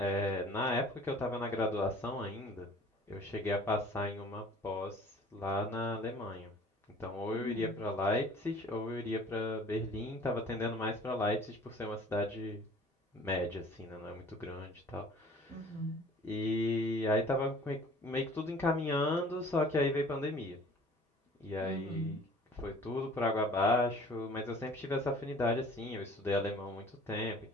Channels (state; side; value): normal; both; correlation 0.50